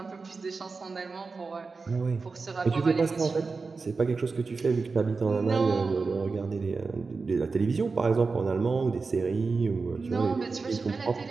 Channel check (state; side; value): quieter; left; 4.3 dB